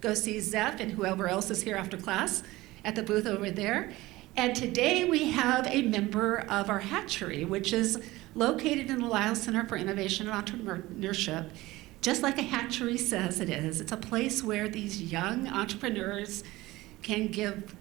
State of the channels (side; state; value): left; quieter; 18.9 dB